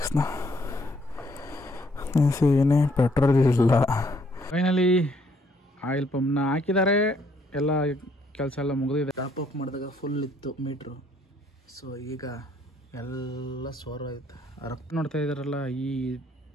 ಏನೇ ಪೆಟ್ರೋಲ್ ಇಲ್ಲ. ಫೈನಲಿ ಆಯಿಲ್ ಪಂಪ್ನ ಹಾಕಿದ್ದಾರೆ, ಎಲ್ಲ ಕೆಲಸ ಎಲ್ಲ ಮುಗಿದಿದೆ. ಟಾಪ್ ಅಪ್ ಮಾಡಿದಾಗ ಫುಲ್ ಇತ್ತು ಮೀಟ್ರು. ಸೊ ಈಗ ಎಲ್ಲ ಸೋರೋಯ್ತು. ರಕ್ತ ನೋಡ್ತಾ ಇದ್ದಾರಲ್ಲ,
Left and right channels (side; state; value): both; normal; correlation 0.67